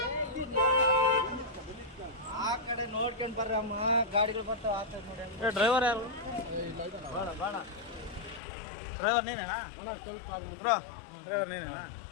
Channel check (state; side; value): drops out; right; at 8.4 s